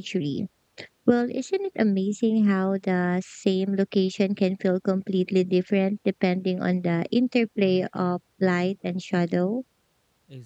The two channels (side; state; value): both; identical; correlation 1.00